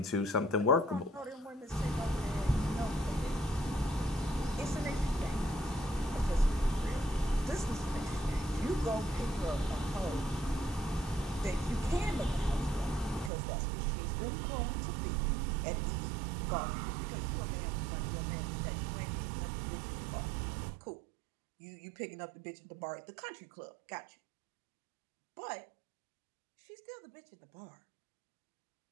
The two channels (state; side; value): drops out; left; at 13.3 s